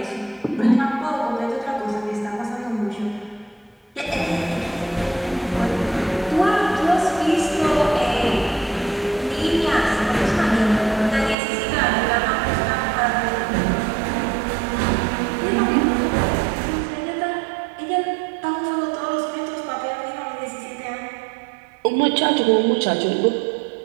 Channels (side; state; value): left; drops out; at 11.4 s